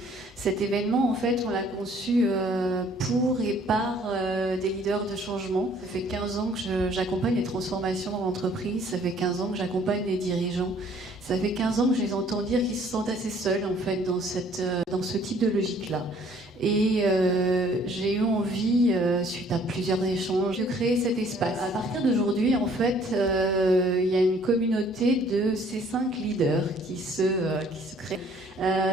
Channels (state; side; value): normal; both; correlation 0.59